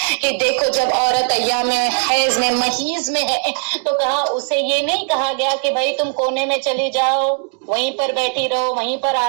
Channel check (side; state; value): left; silent; 56 dB below the other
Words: کہ دیکھو جب عورت ایام حیض میں محیض میں ہے تو کہا اسے یہ نہیں کہا گیا کہ بھائی تم کونے میں چلی جاؤ، وہیں پر بیٹھی رہو، وہیں پر